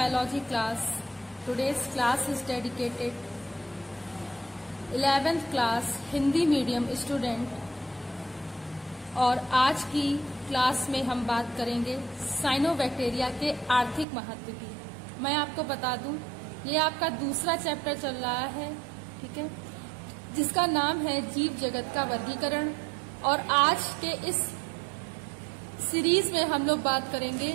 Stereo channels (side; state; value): left; drops out; at 14.1 s